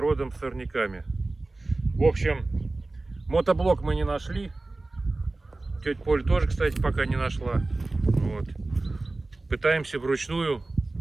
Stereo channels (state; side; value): quieter; left; 3.1 dB